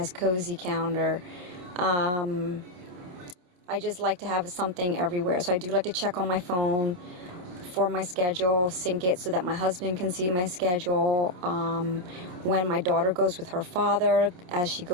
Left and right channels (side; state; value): left; late; 28 ms